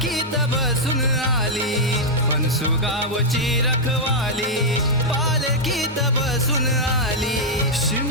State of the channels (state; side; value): normal; both; correlation -0.04